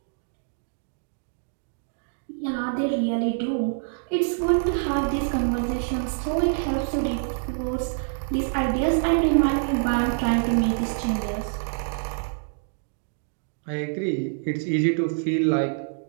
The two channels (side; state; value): left; silent; digital silence